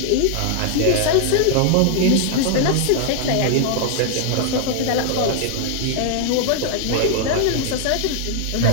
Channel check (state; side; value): different; both; correlation -0.01